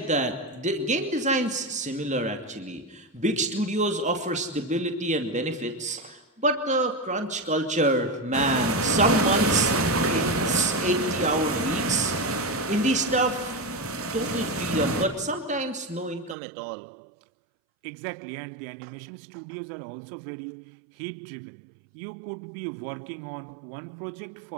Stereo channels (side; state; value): left; drops out; at 16.4 s